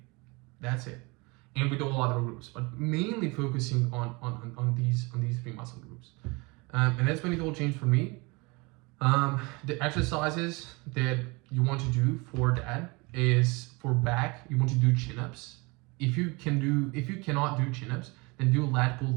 That's it. And with all other groups, but mainly focusing on these 3 muscle groups. And that's when it all changed for me. The exercises that you want to do for that is for back, you want to do chin-ups. If you cannot do chin-ups, then do lat pull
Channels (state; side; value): quieter; left; 26.8 dB